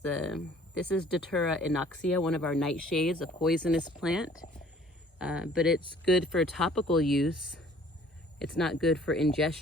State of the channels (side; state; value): both; normal; correlation 0.54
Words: is Deterra Inoxia, one of our nightshades, a poisonous plant, but it's good for topical use. It's not good for